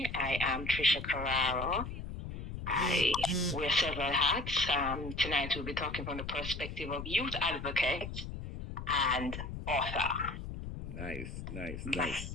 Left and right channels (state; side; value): noise; left; rumble, 8 dB below the sound